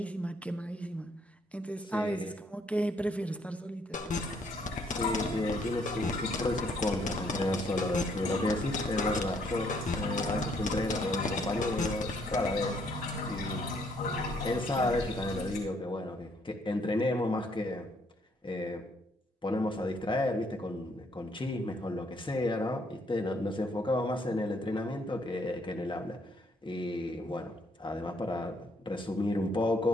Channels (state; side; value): normal; both; correlation 0.69